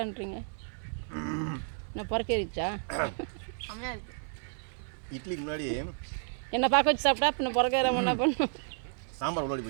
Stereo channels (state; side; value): silent; left; 57 dB below the other